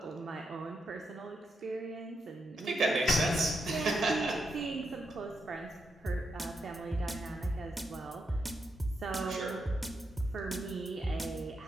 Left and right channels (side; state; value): both; normal; correlation 0.83